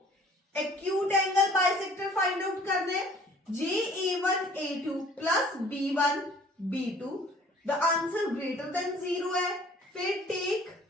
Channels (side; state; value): both; normal; correlation 0.53